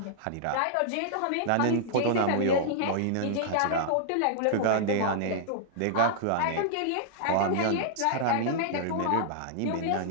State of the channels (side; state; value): both; different; correlation -0.01